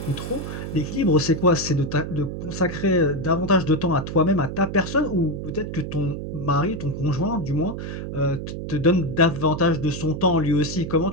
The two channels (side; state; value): right; noise; hum, 6 dB below the sound